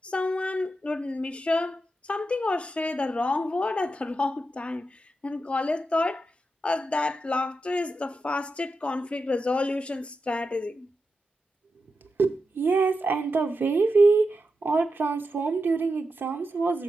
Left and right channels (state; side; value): normal; both; correlation 0.88